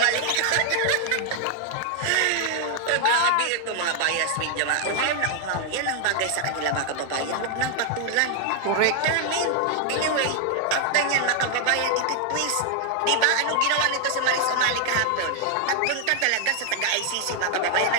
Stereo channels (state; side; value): different; both; correlation 0.00